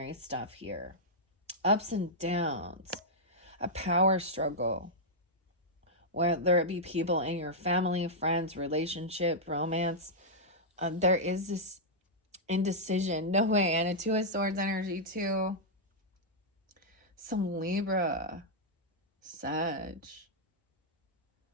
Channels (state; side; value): normal; both; correlation -0.07